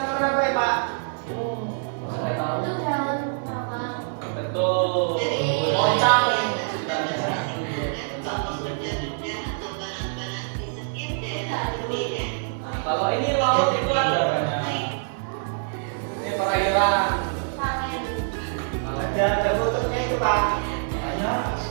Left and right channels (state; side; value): silent; left; digital silence